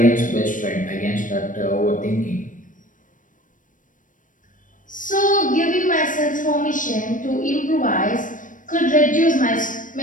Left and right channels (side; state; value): right; late; 0.38 ms